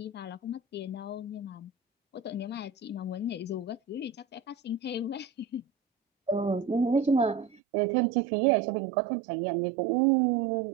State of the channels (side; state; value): left; drops out; at 7.6 s